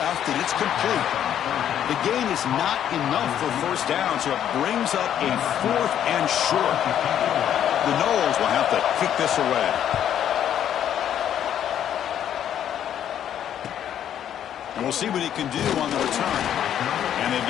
and it's complete. The gain is not enough for first down, so it brings up a 4th and short. The Noles will have to kick this away. And we'll see what he can do on the return. And they've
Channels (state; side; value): quieter; right; 10.1 dB